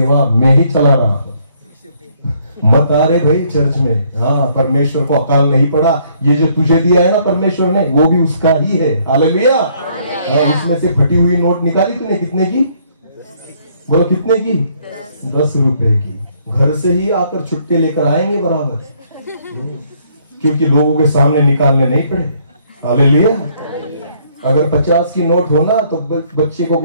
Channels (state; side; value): inverted; both; correlation -0.66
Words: मैं ही चला रहा हूं। मत आ रहे भाई चर्च में। हाँ, परमेश्वर को अकाल नहीं पड़ा। ये जो तुझे दिया है ना परमेश्वर ने, वो भी उसका ही है। हालेलुया। उसमें से फटी हुई नोट निकाली तूने, कितने की? बोलो कितने की? 10 रुपए की। घर से ही आकर छुट्टे लेकर आएंगे बराबर, क्योंकि लोगों के सामने निकालने नहीं पड़े। हालेलुया। अगर 50 की नोट हो ना तो बच्चे को